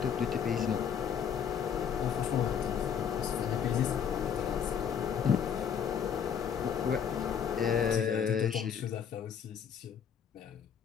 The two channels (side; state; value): right; quieter; 7.9 dB